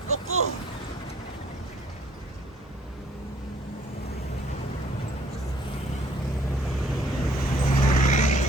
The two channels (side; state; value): both; normal; correlation 0.60